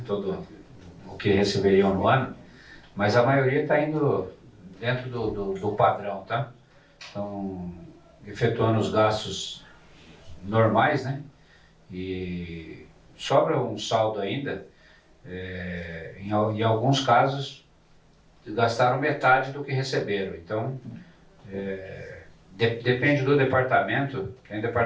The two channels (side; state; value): both; identical; correlation 1.00